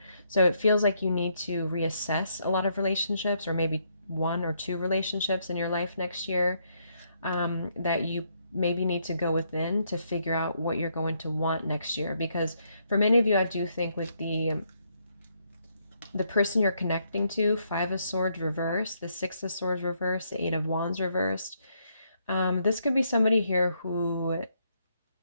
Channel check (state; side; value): inverted; both; correlation -0.74